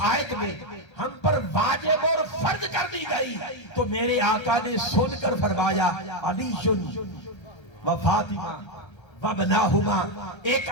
آیت میں ہم پر واجب اور فرض کر دی گئی؟ تو میرے آقا نے سن کر فرمایا علی و فاطمہ و بناہما، ایک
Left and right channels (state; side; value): late; right; 1.3 ms